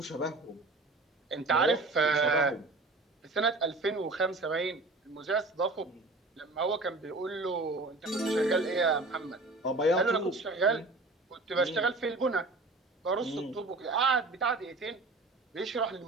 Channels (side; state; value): left; quieter; 3.1 dB